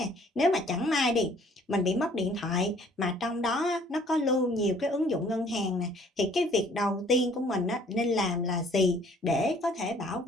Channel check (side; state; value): both; normal; correlation 0.57